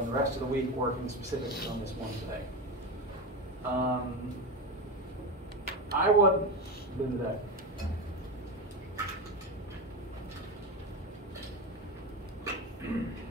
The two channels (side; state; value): both; normal; correlation 0.20